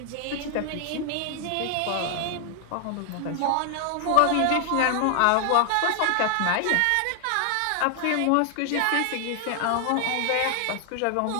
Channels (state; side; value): different; both; correlation 0.00